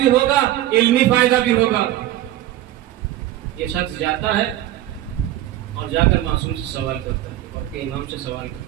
ہوگا، علمی فائدہ بھی ہوگا. یہ شخص جاتا ہے اور جا کر معصوم سے سوال کرتا ہے اور کے امام سے سوال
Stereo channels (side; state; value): left; quieter; 13.8 dB